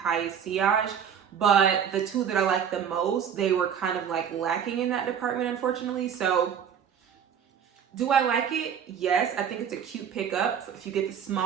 sillage. But the two that I like the most, they were kind of like lacking in that department, unfortunately. So do I like it? Yes, I think it's a cute pickup if you get the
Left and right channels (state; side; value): quieter; left; 8.1 dB